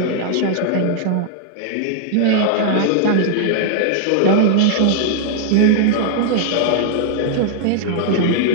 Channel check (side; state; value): both; different; correlation -0.01